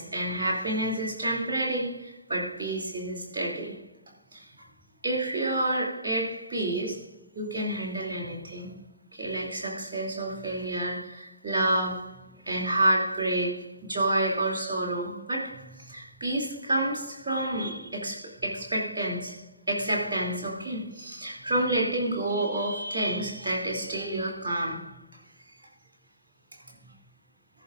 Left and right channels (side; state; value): both; inverted; correlation -0.61